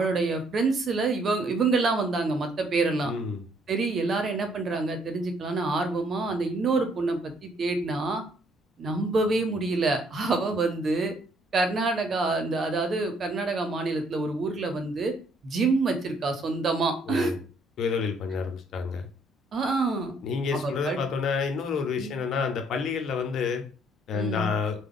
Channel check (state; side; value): normal; both; correlation 0.66